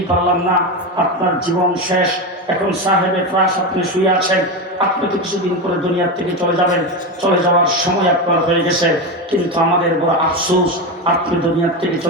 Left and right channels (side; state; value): both; normal; correlation 0.16